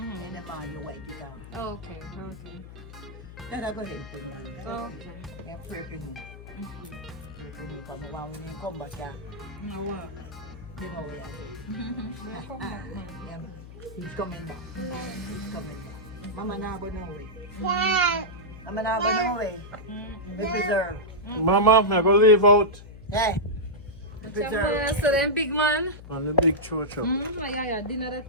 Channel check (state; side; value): noise; left; hum, 15 dB below the sound